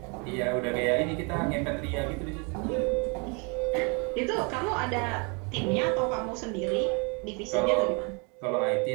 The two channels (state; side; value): quieter; left; 33.2 dB